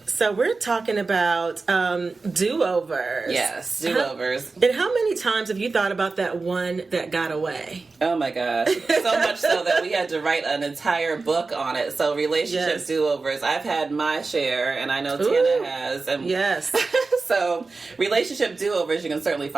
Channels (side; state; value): left; quieter; 3.9 dB